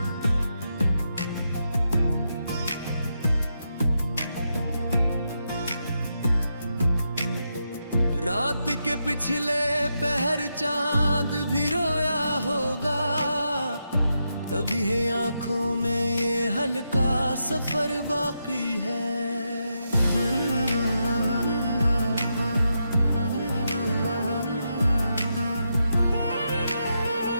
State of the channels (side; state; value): both; inverted; correlation -0.84